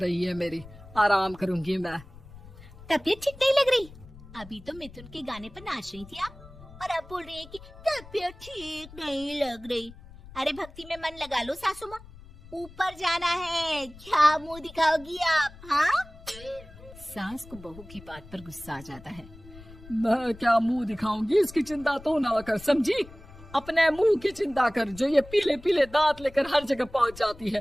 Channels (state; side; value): noise; left; rumble, 19 dB below the sound